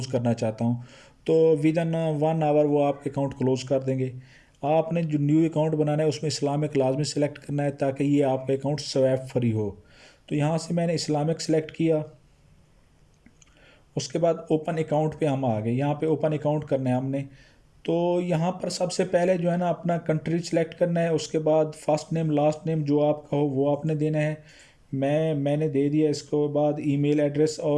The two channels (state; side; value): identical; both; correlation 1.00